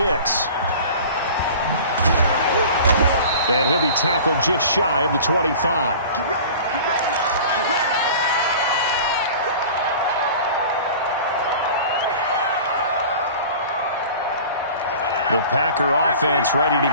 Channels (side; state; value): both; inverted; correlation -0.41